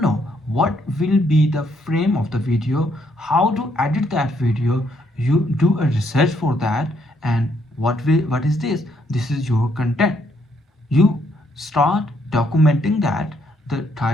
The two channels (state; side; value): normal; both; correlation 0.72